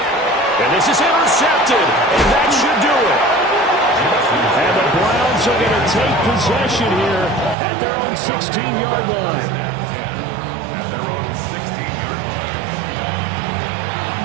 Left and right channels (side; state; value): left; drops out; at 7.6 s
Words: And this is intercepted, and that should do it. And the Browns are going to take possession here at their own 16-yard line. At their own 16-yard